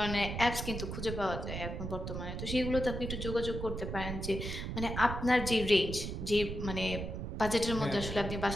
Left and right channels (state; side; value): noise; right; rumble, 5 dB below the sound